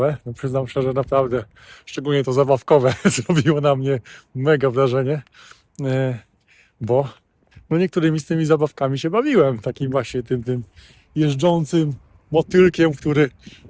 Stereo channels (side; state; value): both; identical; correlation 1.00